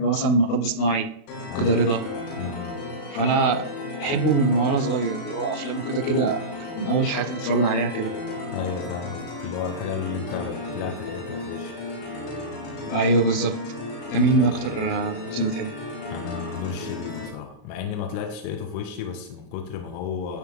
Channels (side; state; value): right; late; 36 ms